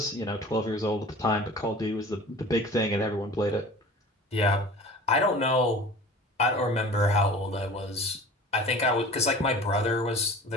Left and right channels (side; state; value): both; normal; correlation 0.41